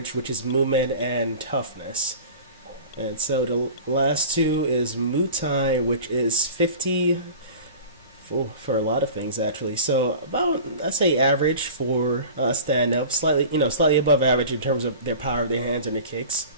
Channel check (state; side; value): inverted; both; correlation -0.38